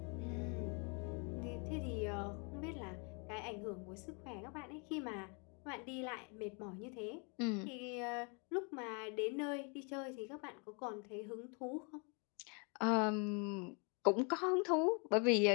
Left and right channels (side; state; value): right; quieter; 35.0 dB